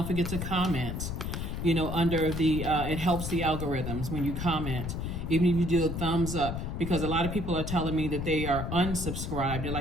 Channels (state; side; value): noise; left; rumble, 4 dB below the sound